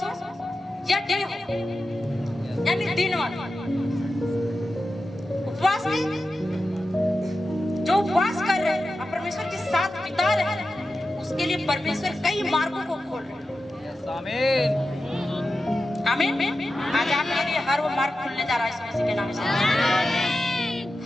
हो या डे हो, यानी दिन वाला उपवास में जो उपवास कर रहे हैं और परमेश्वर के साथ बिता रहे हैं, उसके लिए परमेश्वर कई मार्गों को खोल रहे हैं। आमीन। आमीन। आज आपके लिए हर वो मार्ग खुलने जा रहा है यीशु मसीह के नाम से।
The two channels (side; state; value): both; normal; correlation 0.92